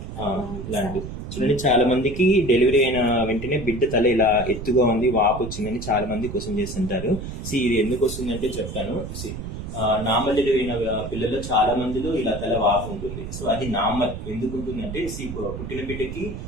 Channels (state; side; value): noise; right; rumble, 8 dB below the sound